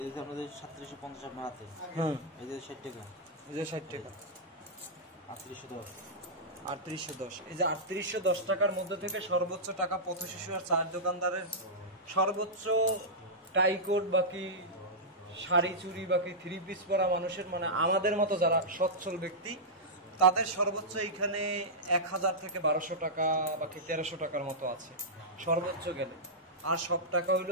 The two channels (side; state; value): both; normal; correlation -0.11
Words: এই যে আপনাদের 3750 আপনার হাতে হুম এই যে 60 টাকা এই যে 60 টাকা 3810 3810। এই যে 3810 টাকার মধ্যে থেকে সর্বোচ্চ টাকা পথ শিশু আর চায়ের দোকানদারের, সর্বোচ্চ টাইকোট বাকি শাড়ি চুড়ি বাকি 3 পিস পরা মানুষের, মানে আমাদের মতো যারা সচ্ছল ব্যক্তি, তাদের সর্বোচ্চ এইখানে 1000 থেকে 1200 টাকা বাকি 1300 টাকার মতো আছে সর্বোচ্চ গেলে। আর সব টাকা